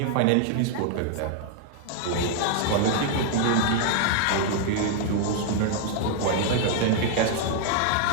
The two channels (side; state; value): both; different; correlation 0.00